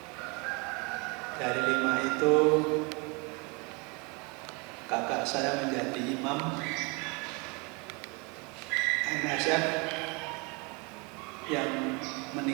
Dari 5 itu kakak saya menjadi imam MSF yang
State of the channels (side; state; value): left; quieter; 29.8 dB